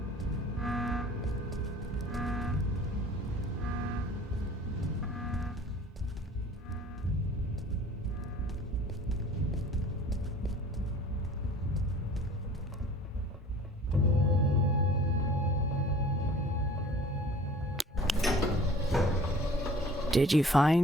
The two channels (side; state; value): both; normal; correlation 0.47